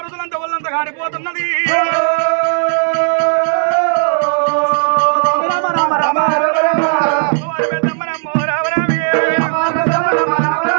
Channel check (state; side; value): silent; left; 64 dB below the other